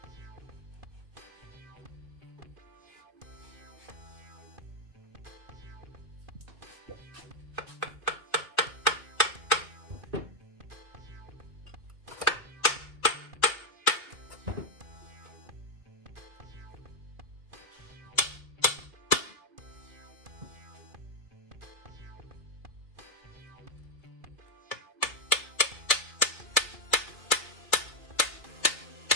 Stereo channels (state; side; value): late; left; 2.2 ms